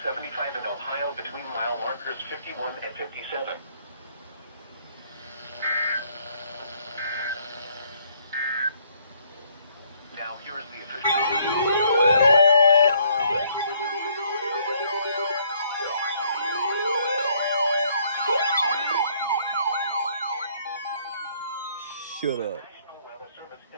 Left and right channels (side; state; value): both; inverted; correlation -0.66